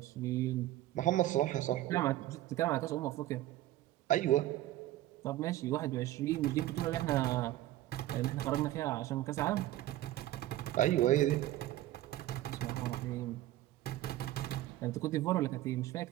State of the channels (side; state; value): left; quieter; 14.8 dB